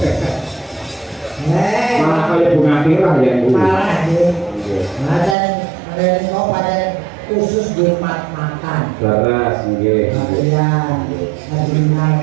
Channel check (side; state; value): left; drops out; at 5.4 s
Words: Malah kaya bunga tirah ya Bu. Malah nggih. Ada kok pada khusus di makan. Laras nggih. Iya.